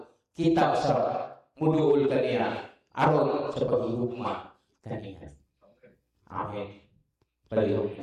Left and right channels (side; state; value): both; identical; correlation 1.00